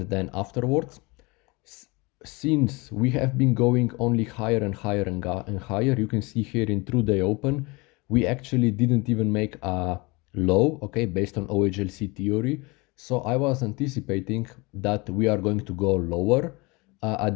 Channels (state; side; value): quieter; right; 25.8 dB